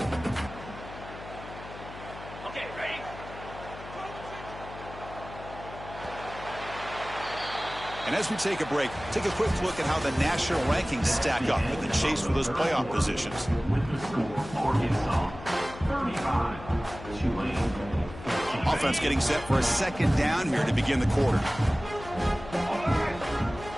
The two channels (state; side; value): noise; left; hum, 14 dB below the sound